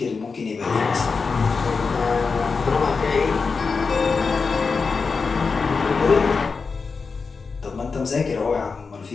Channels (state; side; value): quieter; right; 4.8 dB